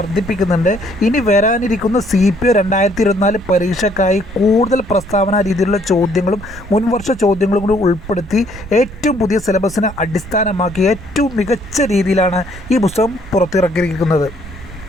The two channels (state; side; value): noise; right; rumble, 15 dB below the sound